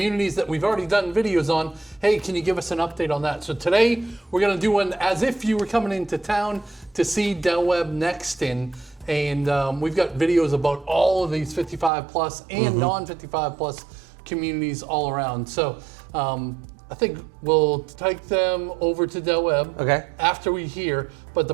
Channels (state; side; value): drops out; left; at 11.9 s